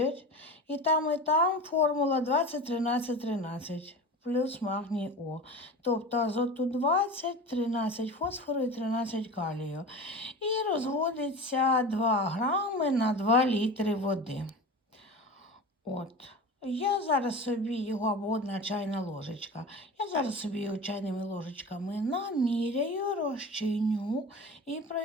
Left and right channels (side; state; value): both; normal; correlation 0.32